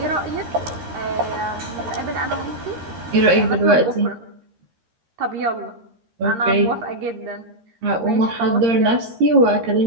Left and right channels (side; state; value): left; late; 13 ms